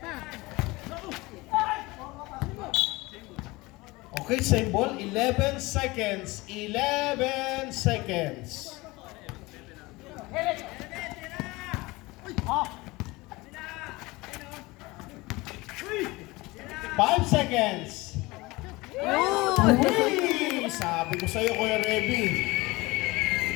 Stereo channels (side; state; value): right; quieter; 22.1 dB